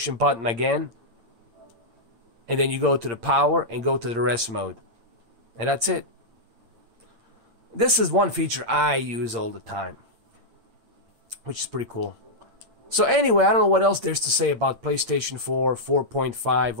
button again, and then you go to the power and go to the rest mode, and that's it. This is one feature I use all the time, which is pretty cool. So anyway, I don't know what else there's to say about PlayStation 4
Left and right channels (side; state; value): left; late; 8.6 ms